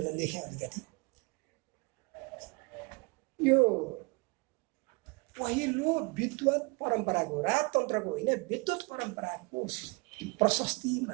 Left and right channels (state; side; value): quieter; left; 28.3 dB